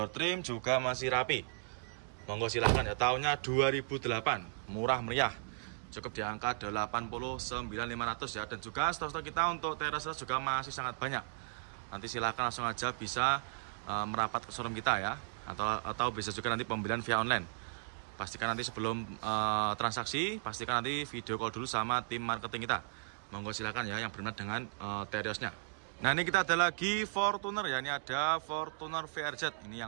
trim juga masih rapi. Monggo silahkan ya. Tahunnya 2008, murah meriah, cukup di angka 89.500 ya. Dan juga stok-stok kita untuk Terios juga masih sangat banyak. Nanti silahkan langsung aja bisa merapat ke showroom kita ya, atau bisa juga nanti pembelian via online. Pastikan nanti sebelum transaksi, pastikan nanti video call dulu sama tim marketing kita. Monggo silahkan ya yang berminat dengan Teriosnya. Nah, ini kita ada lagi Fortuner ya. Ini ada Fortuner VRZ. Ini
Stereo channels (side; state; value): left; silent; digital silence